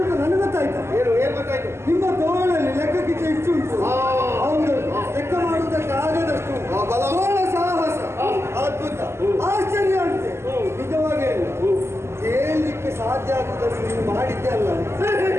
ನನಗೆ ಗೊತ್ತಾಯ್ತು. ಏನು ಗೊತ್ತಾಯ್ತು? ನಿಮ್ಮ ತೋಳಲ್ಲಿ ಲೆಕ್ಕಕ್ಕಿಂತ ಹೆಚ್ಚು ಉಂಟು. ಹೌದು, ಲೆಕ್ಕ ಮಾಡುವುದಕ್ಕೆ ಆಗದಷ್ಟು ತೋಳ ಸಾಹಸ ಅದ್ಭುತ, ಆಶ್ಚರ್ಯ ಅಂತೆ. ನಿಜವಾಗಿ ಹೇಳಲಿಕ್ಕೆ ಸಾಧ್ಯ ಆಗುವುದನ್ನು ನೀವು ಮಾಡಿದ್ದೆ ಅಲ್ಲ,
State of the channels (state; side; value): late; left; 0.13 ms